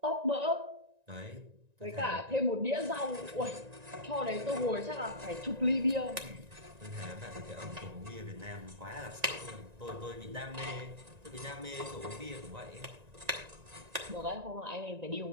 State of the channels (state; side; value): late; left; 1.9 ms